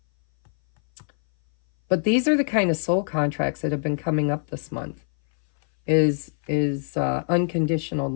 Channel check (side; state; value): right; silent; 59 dB below the other